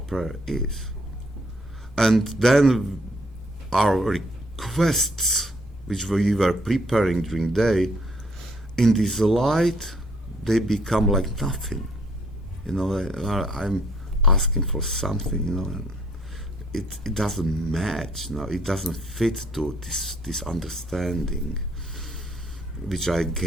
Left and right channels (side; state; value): both; normal; correlation 0.66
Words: prayer is. And then our requests, which we were preparing during the day, in this light, they become like nothing. I'm asking for something, and it doesn't match. It doesn't fit to this understanding which I